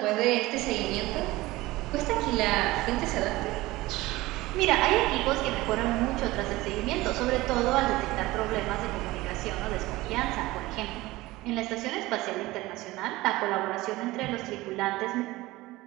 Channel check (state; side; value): quieter; left; 19.2 dB